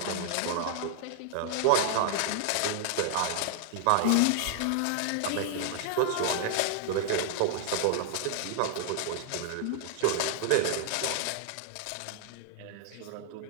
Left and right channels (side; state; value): both; different; correlation 0.00